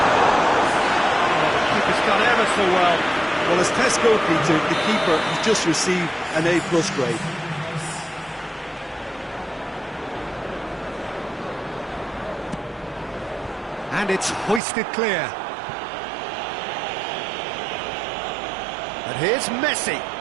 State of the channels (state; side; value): drops out; left; at 14.6 s